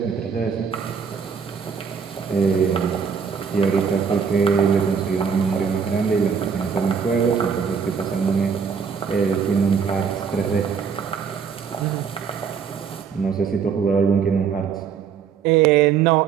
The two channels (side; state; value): left; quieter; 6.5 dB